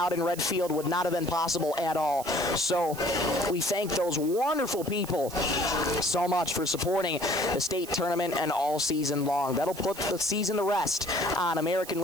in Redfield would not have been possible at all. So we thank those wonderful people so much for supporting the state tournament and all season long. That'll put the season to rest on American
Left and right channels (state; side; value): noise; right; hiss, 14 dB below the sound